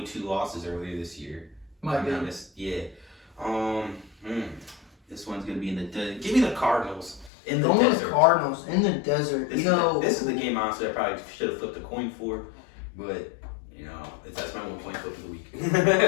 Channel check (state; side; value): drops out; right; at 7.3 s